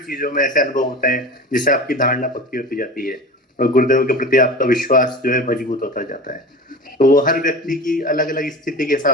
चीजों में ऐसे अनुभव होते हैं जिससे आपकी धारणा पक्की होती जाती है, और गुरुदेव के प्रति आपका विश्वास जो है मजबूत होता जाता है। तो वो हर व्यक्ति की अलग अलग स्थिति के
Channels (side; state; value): both; normal; correlation 0.33